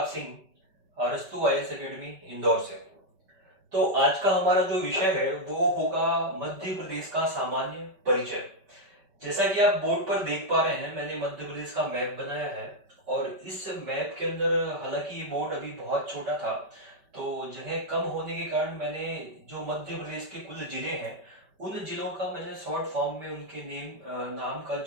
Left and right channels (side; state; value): left; late; 5.2 ms